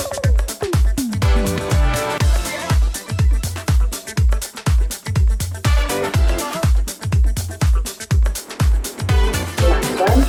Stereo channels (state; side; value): identical; both; correlation 1.00